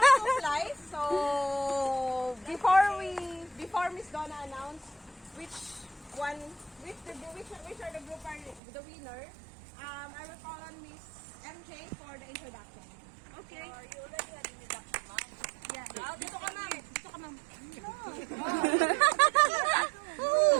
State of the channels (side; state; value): left; drops out; at 8.6 s